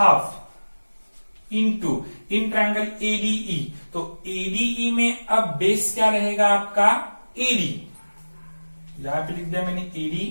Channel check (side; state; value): both; inverted; correlation -1.00